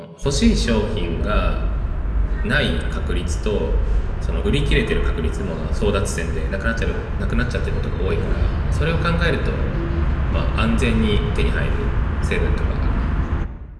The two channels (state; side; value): identical; both; correlation 1.00